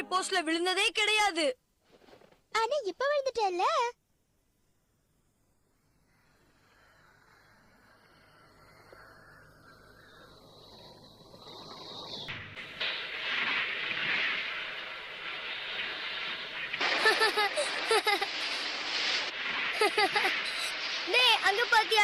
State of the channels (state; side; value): identical; both; correlation 1.00